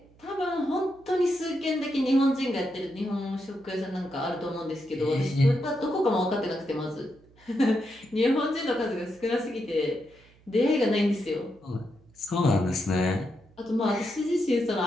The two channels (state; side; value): noise; right; hum, 28 dB below the sound